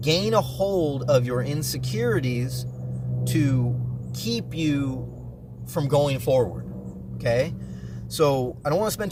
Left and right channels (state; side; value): identical; both; correlation 1.00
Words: gain a hold of your insecurities to keep you from going forward. Okay, so I don't want to spend